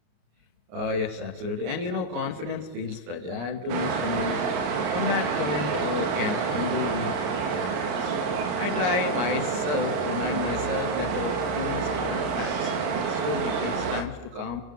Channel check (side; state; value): left; late; 33 ms